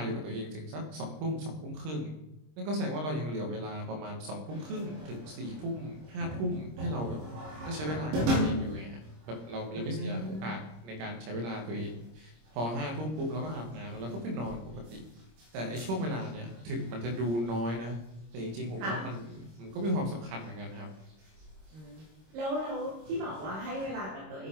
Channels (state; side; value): late; left; 26 ms